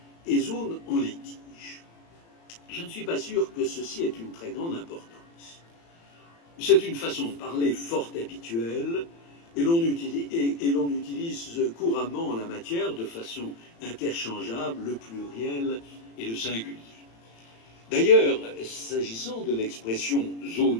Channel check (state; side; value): late; right; 35 ms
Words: et zones en litige. Je ne suis pas sûr que ceci ait une très grande importance. C'est une façon de parler fort habituelle et l'on utilise couramment en la matière de façon interchangeable le pluriel et le singulier. D'ailleurs, s'agissant de l'expression